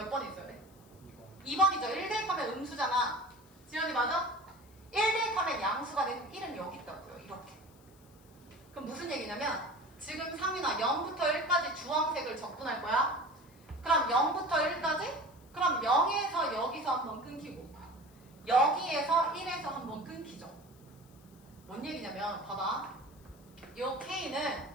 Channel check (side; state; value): left; noise; hiss, 28 dB below the sound